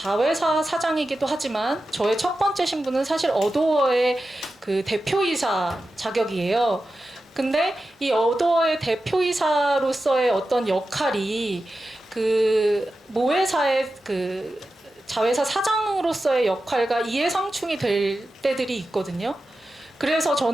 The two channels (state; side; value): normal; both; correlation 0.92